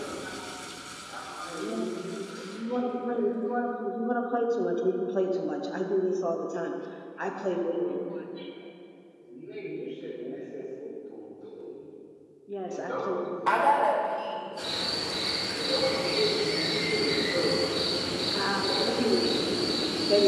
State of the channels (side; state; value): both; identical; correlation 1.00